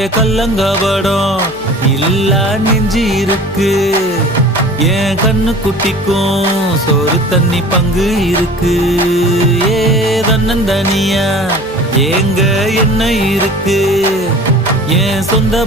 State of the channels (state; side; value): noise; left; hum, 21 dB below the sound